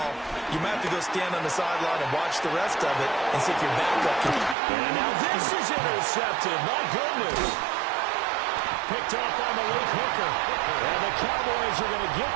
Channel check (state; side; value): drops out; left; at 4.5 s